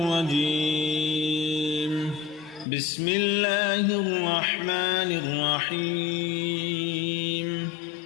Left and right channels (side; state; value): right; drops out; at 2.7 s